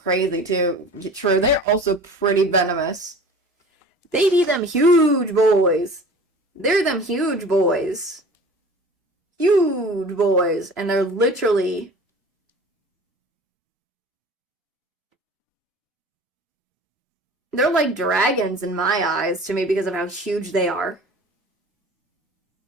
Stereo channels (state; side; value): normal; both; correlation 0.41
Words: too. True, they're also pretty venomous. They be them huge boys. They're them huge boys. Huge boys, and they're literally. They're like dragons in my eyes to me because of how huge they are.